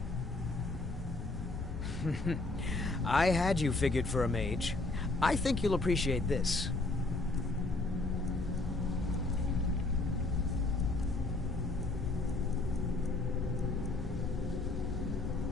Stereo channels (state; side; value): quieter; right; 3.1 dB